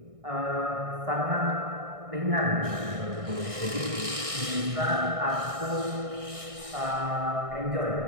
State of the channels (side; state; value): left; late; 1.6 ms